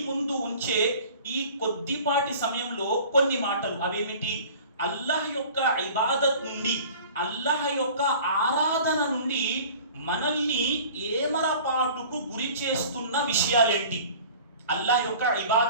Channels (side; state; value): both; inverted; correlation -0.45